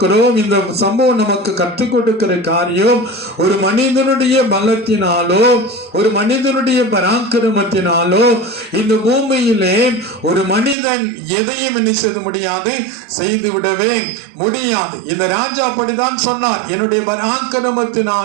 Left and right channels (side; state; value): left; drops out; at 10.8 s